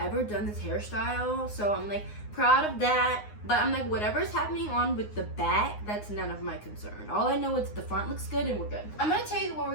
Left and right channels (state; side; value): late; right; 9.6 ms